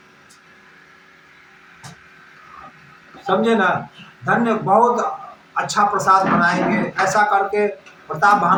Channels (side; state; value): both; identical; correlation 1.00